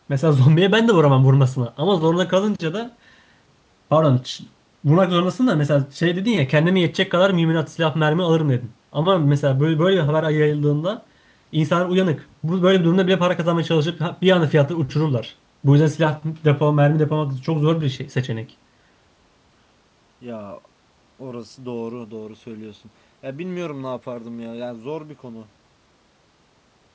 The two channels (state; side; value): identical; both; correlation 1.00